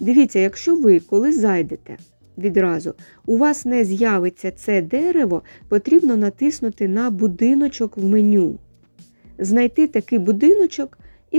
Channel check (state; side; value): inverted; both; correlation -1.00